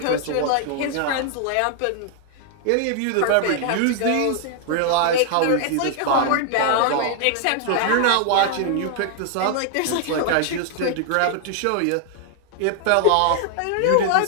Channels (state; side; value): different; both; correlation 0.00